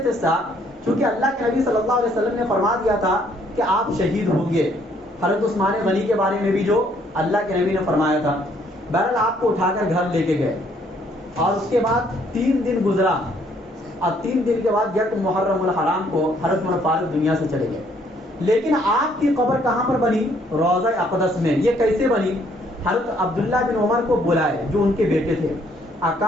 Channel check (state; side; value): normal; both; correlation 0.66